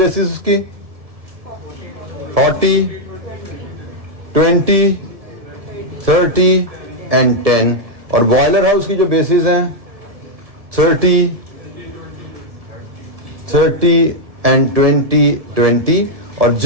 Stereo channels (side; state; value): left; late; 1.7 ms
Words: उसकी 40, 20, 30 एंड 10, और बॉयलर हाउस की जो बेसिस हैं 30 एंड 20। और